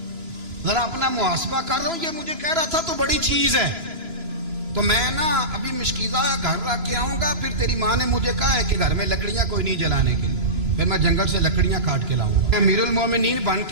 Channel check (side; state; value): left; late; 3.0 ms